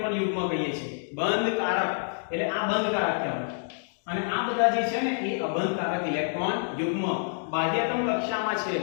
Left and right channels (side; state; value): right; silent; digital silence